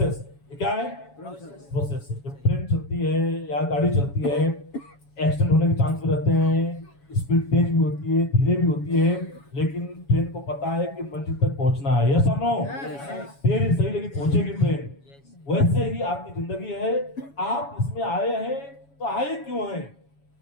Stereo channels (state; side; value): late; right; 7.2 ms